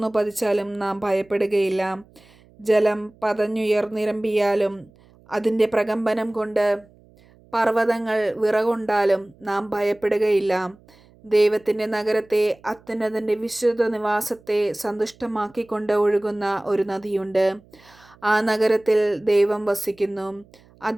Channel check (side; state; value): right; noise; hum, 28 dB below the sound